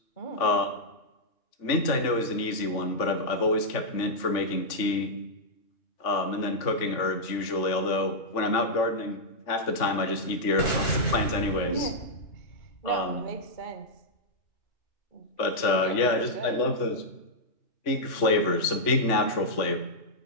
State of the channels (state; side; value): late; right; 3.4 ms